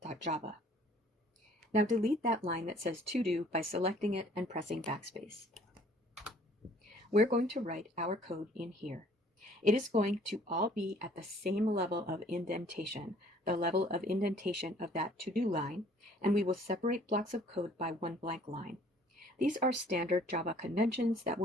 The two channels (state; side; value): normal; both; correlation 0.56